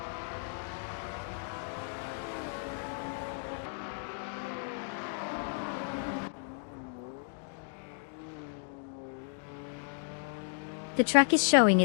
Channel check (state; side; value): silent; right; 55 dB below the other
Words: The track is showing